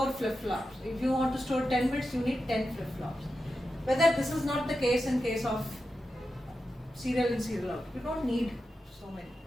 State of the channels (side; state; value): both; normal; correlation 0.90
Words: flip-flops. If you want to store 10 bits, you need 10 flip-flops. Whether this is not the case in case of serial in, serial out. You don't need so many.